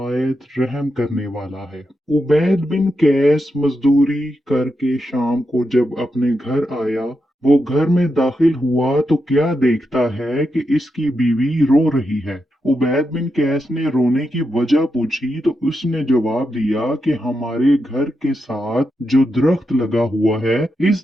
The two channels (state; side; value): normal; both; correlation 0.86